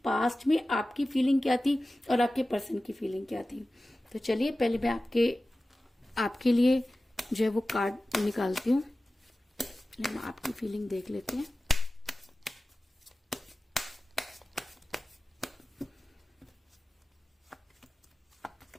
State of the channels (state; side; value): normal; both; correlation 0.96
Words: पास्ट में आपकी फीलिंग क्या थी और आपके पर्सन की फीलिंग क्या थी। तो चलिए पहले मैं आपके लिए जो है वो कार्ड निकालती हूँ। हम आपकी फीलिंग देख लेते हैं।